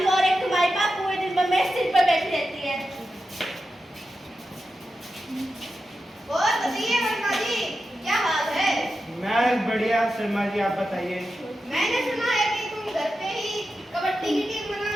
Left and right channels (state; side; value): normal; both; correlation 0.90